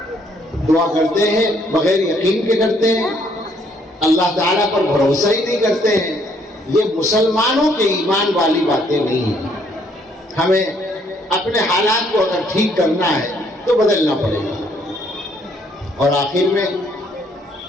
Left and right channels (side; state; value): both; normal; correlation 0.67